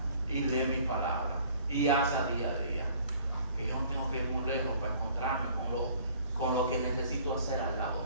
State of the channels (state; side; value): inverted; both; correlation -0.54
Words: y lee mi palabra y haz a día. que yo no tengo que ir muy lejos para encontrarme con lo que necesito hacer al